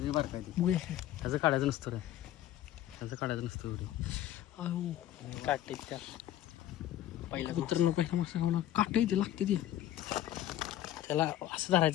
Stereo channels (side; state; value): right; quieter; 12.8 dB